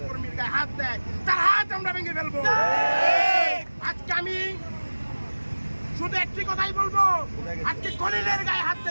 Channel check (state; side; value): inverted; both; correlation -1.00